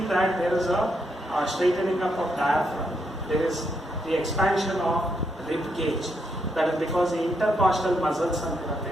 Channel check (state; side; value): normal; both; correlation 0.78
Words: that there is a straightening up of diaphragm. There is the expansion of rib cage. That is because the intercostal muscles